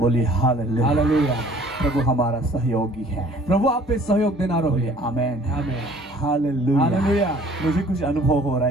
हालेलुया। हालेलुया। प्रभु हमारा सहयोगी है। प्रभु आप पे सहयोग देना बोलिए रहो। आमेन। आमेन। हालेलुया। हालेलुया। मुझे कुछ अनुभव हो रहा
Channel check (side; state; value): both; normal; correlation 0.54